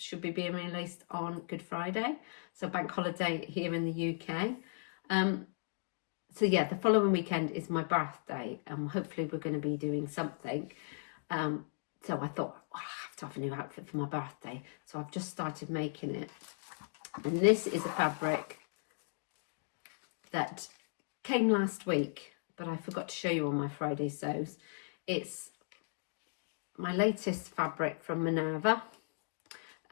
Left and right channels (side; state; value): right; silent; digital silence